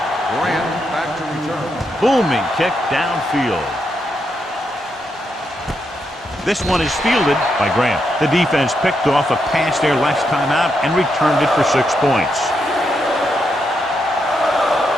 Grant back to return. Booming kick downfield. This one is fielded by Grant. The defense picked off a pass there last time out and returned it for 6 points.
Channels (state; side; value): normal; both; correlation 0.81